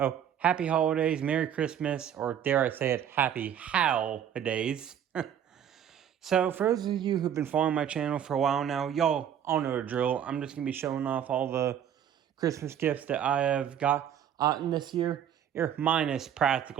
happy holidays, Merry Christmas, or dare I say it, happy HOWLidays. So, for those of you who've been following my channel for a while now, y'all all know the drill. I'm just going to be showing off all the Christmas gifts that I have gotten this year, minus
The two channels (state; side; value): quieter; left; 9.5 dB